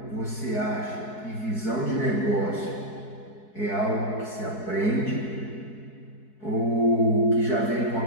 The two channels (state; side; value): late; right; 4.7 ms